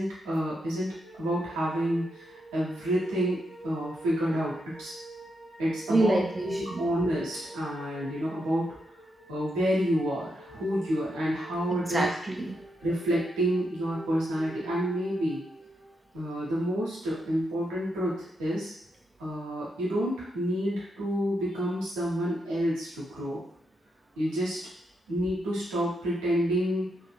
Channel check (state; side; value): normal; both; correlation 0.82